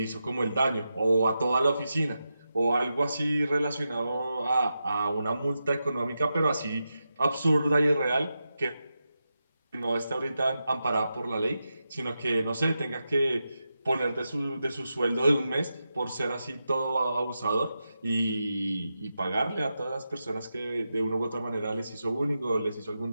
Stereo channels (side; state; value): both; inverted; correlation -0.89